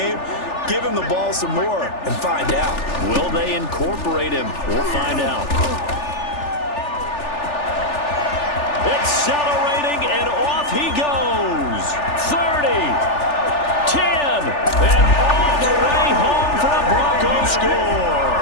Give him the ball some more and find out. Will they incorporate him? We'll find out. Accelerating, and off he goes. 30, 10, and all the way home for the Broncos score.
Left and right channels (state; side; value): late; right; 3.4 ms